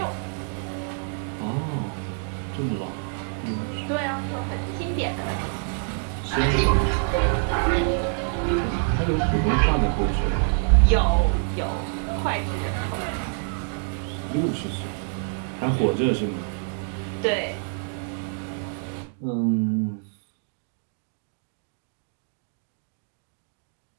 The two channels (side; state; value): left; silent; 55 dB below the other